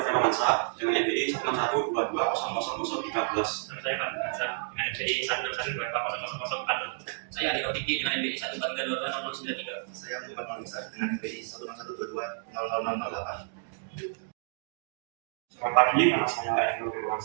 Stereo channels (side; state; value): left; silent; digital silence